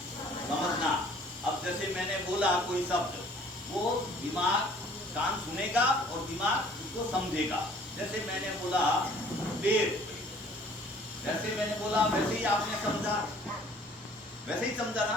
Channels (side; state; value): both; normal; correlation 0.55